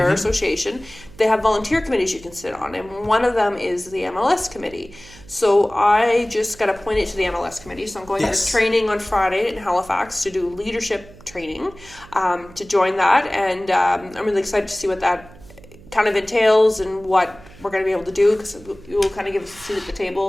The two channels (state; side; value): noise; right; hum, 22 dB below the sound